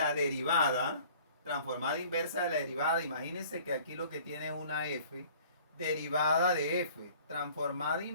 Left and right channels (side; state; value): both; inverted; correlation -0.51